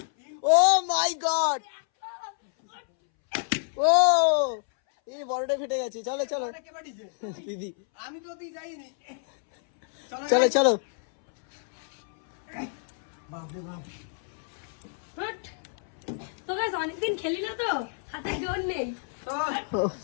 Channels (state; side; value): silent; right; 59 dB below the other